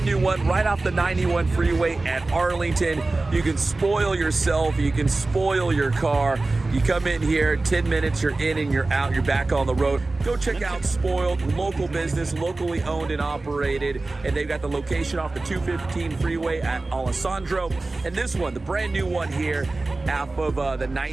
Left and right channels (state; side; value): quieter; left; 3.3 dB